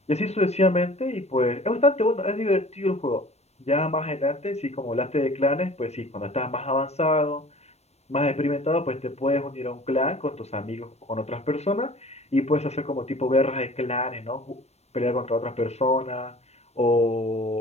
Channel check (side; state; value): right; late; 0.31 ms